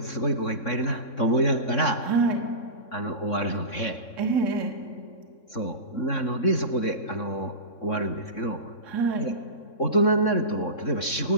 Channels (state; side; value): late; right; 3.6 ms